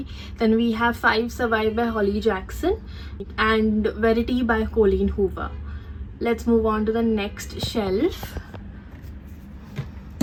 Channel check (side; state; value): both; identical; correlation 1.00